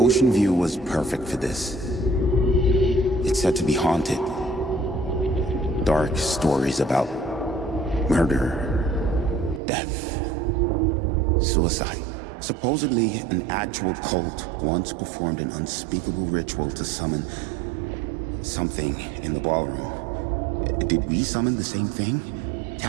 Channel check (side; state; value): left; drops out; at 9.6 s